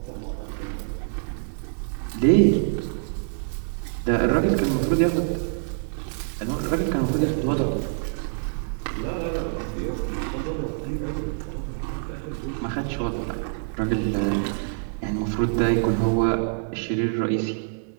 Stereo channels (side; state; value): left; silent; digital silence